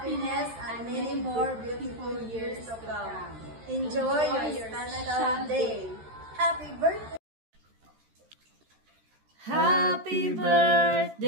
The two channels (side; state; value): left; late; 13 ms